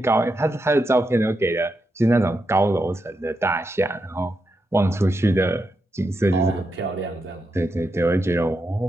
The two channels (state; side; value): normal; both; correlation 0.85